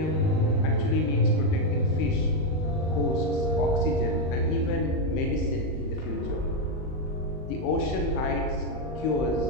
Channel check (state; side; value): late; right; 38 ms